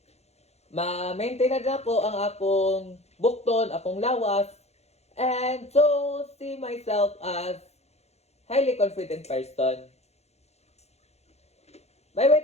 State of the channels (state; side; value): late; right; 0.31 ms